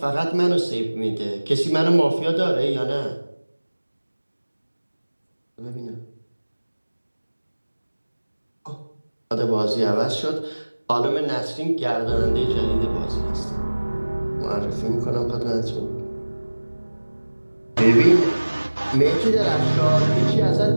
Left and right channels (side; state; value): both; inverted; correlation -1.00